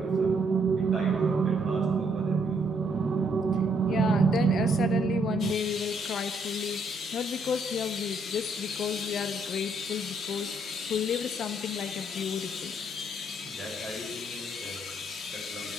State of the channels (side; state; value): both; normal; correlation 0.71